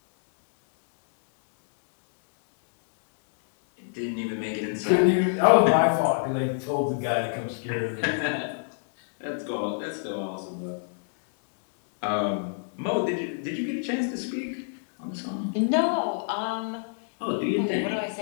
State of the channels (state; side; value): silent; right; digital silence